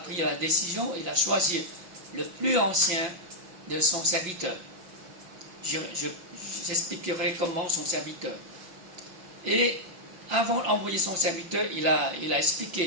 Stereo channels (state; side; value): late; left; 5.9 ms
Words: la décision, il a choisi le plus ancien de son serviteur. J'expliquerai comment son serviteur. Et avant d'envoyer son serviteur, il a